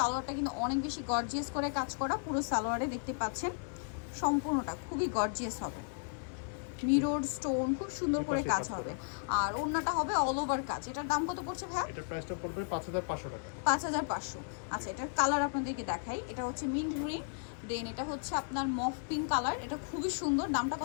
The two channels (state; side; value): silent; right; digital silence